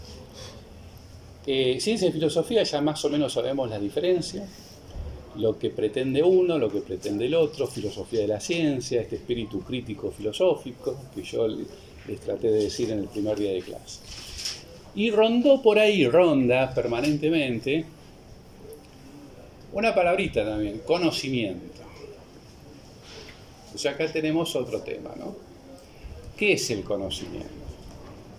Ciencia y filosofía ya más o menos sabemos la diferencia, lo que pretende uno, lo que pretende el otro, filosofía de la ciencia, este espíritu crítico filosófico que yo les traté de decir en el primer día de clase. Y ronda permanentemente una palabrita también, conocimiento. O sea, acá tenemos otro tema, ¿no? ¿Qué es el conocimiento?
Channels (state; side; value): identical; both; correlation 1.00